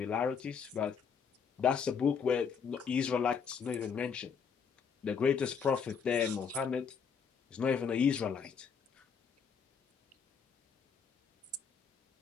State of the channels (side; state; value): right; quieter; 6.4 dB